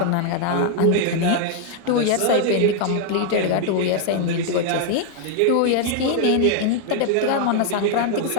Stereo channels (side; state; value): both; different; correlation 0.00